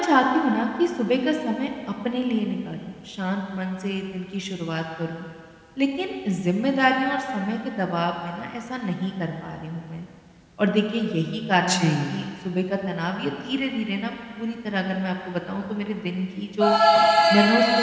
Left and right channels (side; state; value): both; identical; correlation 1.00